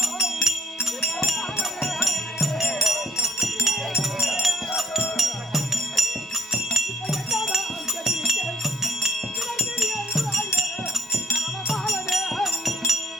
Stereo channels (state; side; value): normal; both; correlation 0.64